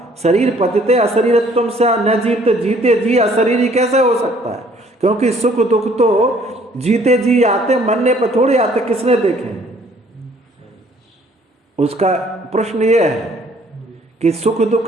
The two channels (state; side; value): normal; both; correlation 0.60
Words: शरीर पतिते अशरीरत्वम से न जीवते, जीते जी अशरीरी कैसे हो सकता है? क्योंकि सुख दुख तो जीते जी आते, मरने पर थोड़ी आते, किसने देखे? उसका प्रश्न ये है कि सुख